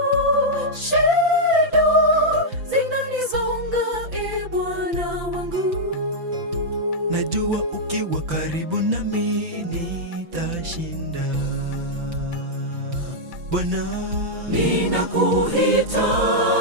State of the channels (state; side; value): late; left; 5.9 ms